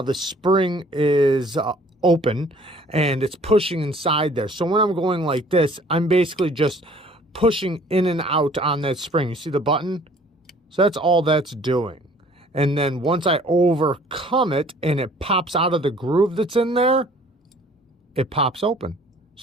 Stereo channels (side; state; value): both; normal; correlation 0.55